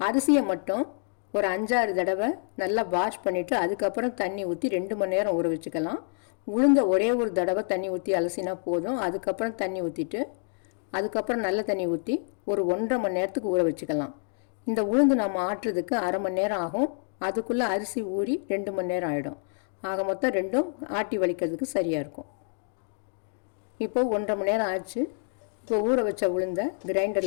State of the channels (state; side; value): silent; right; 60 dB below the other